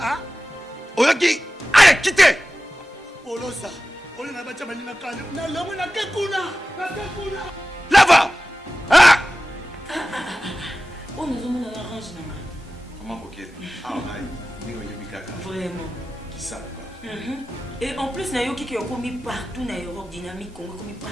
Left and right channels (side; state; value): both; normal; correlation 0.96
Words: Oyoki allez quitter. Apolosa oli na bacha baninga kana na lomo na ke kuna Là va. Ah ange na ngai. Maman coquette. Ah, Vraiment. Qui ça? Et en plus, nayoki qui est commis partout dans l'Europe, dynamique Congo, commis